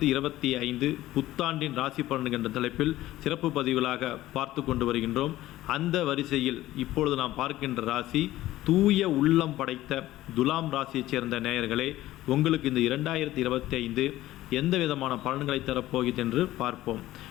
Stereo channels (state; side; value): quieter; right; 15.5 dB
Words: புத்தாண்டின் ராசி பலன்கள் என்ற தலைப்பில் சிறப்பு பதிவுகளாக பார்த்து கொண்டு வருகின்றோம். அந்த வரிசையில் இப்பொழுது நாம் பார்க்கின்ற ராசி தூய உள்ளம் படைத்த துலாம் ராசியைச் சேர்ந்த நேயர்களே, உங்களுக்கு இந்த 2025 எந்த விதமான பலன்களை தரப்போகிறது என்று பார்ப்போம்.